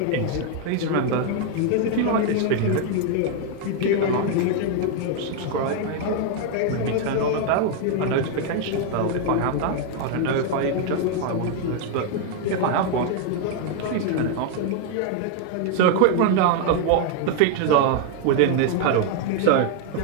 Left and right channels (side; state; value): both; different; correlation 0.00